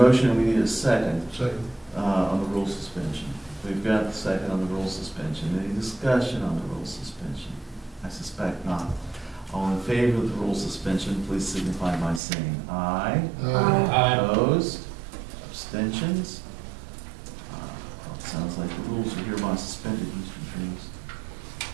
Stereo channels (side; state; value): left; drops out; at 12.2 s